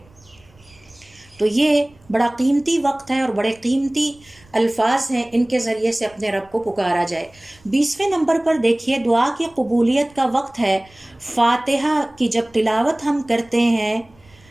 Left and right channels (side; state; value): right; noise; rumble, 29 dB below the sound